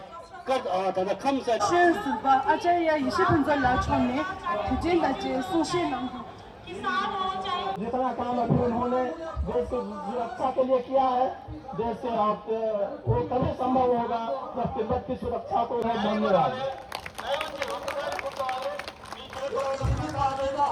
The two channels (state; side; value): identical; both; correlation 1.00